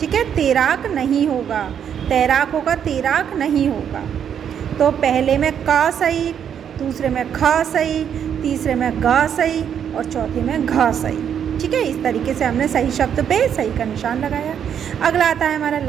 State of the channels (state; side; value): quieter; left; 8.5 dB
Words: है, तैराक नहीं होगा, तैराक होगा, तैराक नहीं होगा। तो पहले में का सही, दूसरे में ख सही, तीसरे में ग सही और चौथे में घ सही। ठीक है, इस तरीके से हमने सही शब्द पे सही का निशान लगाया। अगला आता है हमारा